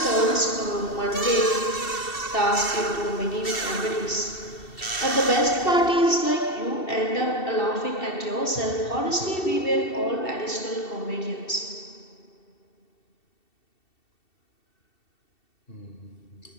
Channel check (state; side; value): late; right; 2.7 ms